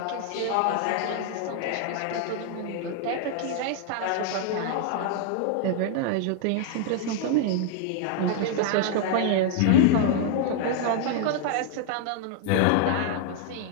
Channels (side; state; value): both; different; correlation 0.00